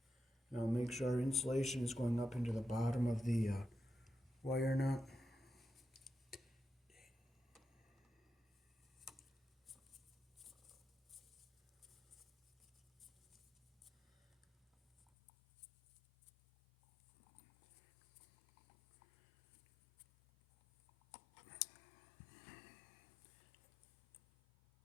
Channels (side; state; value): right; drops out; at 15.1 s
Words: Now make sure our insulation is going up into the bottom of the wire nut.